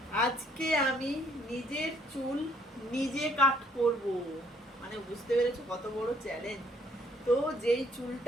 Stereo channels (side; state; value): both; normal; correlation 0.65